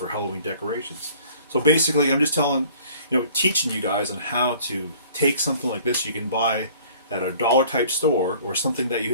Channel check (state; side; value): inverted; both; correlation -0.52